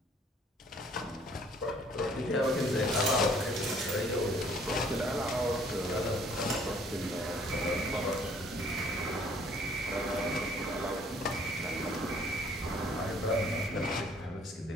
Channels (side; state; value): both; normal; correlation 0.59